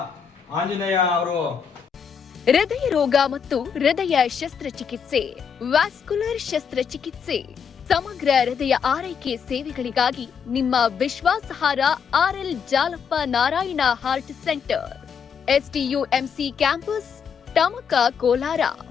ಆಂಜನೇಯ ಅವರು ಹೃದಯ ರೋಗ ಮತ್ತು ಹೃದಯ ಶಸ್ತ್ರಚಿಕಿತ್ಸೆ, ವ್ಯಾಸ್ಕ್ಯುಲರ್ ಶಸ್ತ್ರಚಿಕಿತ್ಸೆ, ಸಮಗ್ರ ಹೃದಯ ಆರೈಕೆ ಸೇವೆಗಳಿಗಾಗಿ ನಿಮ್ಮ ವಿಶ್ವಾಸಾರ್ಹ RL Jalappa Narayana heart centre, STUMC campus, Tamaka, Kolar.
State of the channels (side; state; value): right; quieter; 6.9 dB